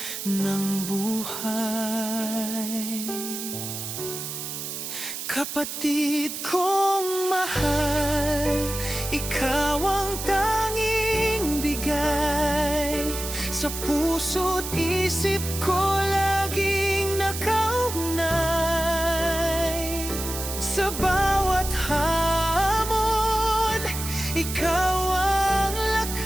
ng buhay. Kapatid kong mahal, ikaw ang tanging bigay. Sa puso't isip ko laging nakaugnay. Sa bawat hamon, ikaw ang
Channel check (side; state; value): right; noise; hiss, 6 dB below the sound